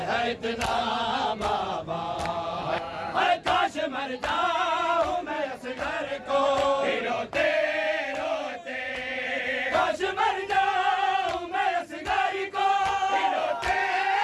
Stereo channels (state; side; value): identical; both; correlation 1.00